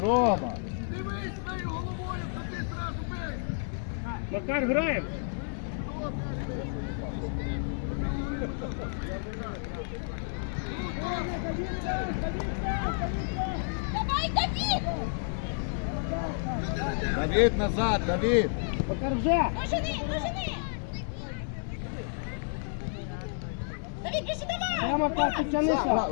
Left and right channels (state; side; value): silent; right; digital silence